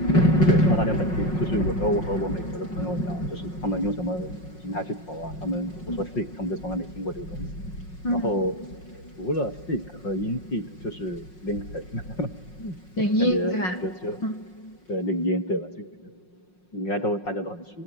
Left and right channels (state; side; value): late; right; 5.5 ms